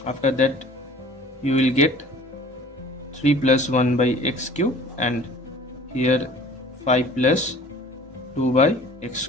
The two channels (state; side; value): normal; both; correlation 0.48